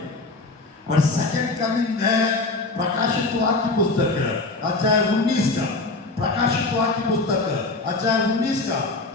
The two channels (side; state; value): right; quieter; 3.4 dB